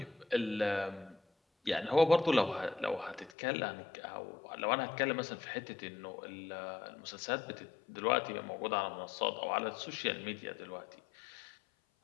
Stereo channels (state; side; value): drops out; right; at 3.3 s